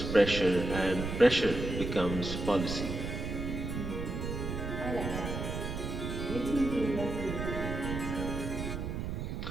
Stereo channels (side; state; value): right; noise; rumble, 4 dB below the sound